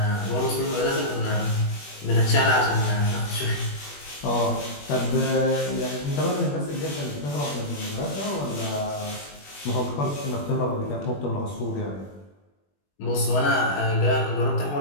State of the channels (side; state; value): right; late; 21 ms